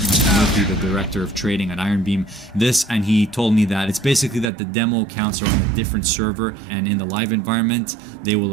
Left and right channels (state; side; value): drops out; left; at 4.5 s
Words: Murphy, the director of trading at Ironbeam, this, and he told me that it's basically that the demo accounts are on a different server, and in the live environment, they will